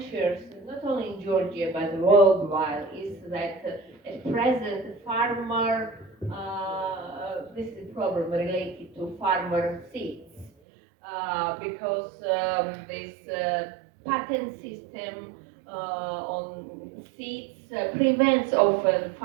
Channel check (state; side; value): drops out; left; at 10.5 s